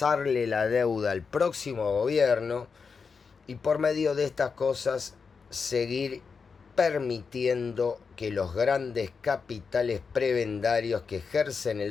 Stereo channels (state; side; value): quieter; right; 5.3 dB